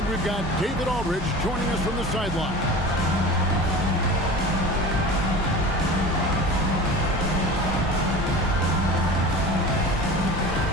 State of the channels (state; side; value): normal; both; correlation 0.35